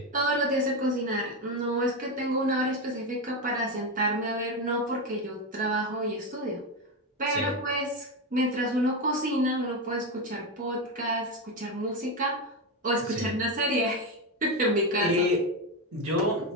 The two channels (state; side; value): normal; both; correlation 0.13